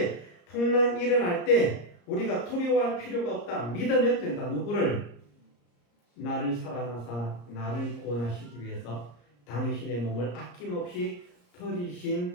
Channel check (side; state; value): right; late; 34 ms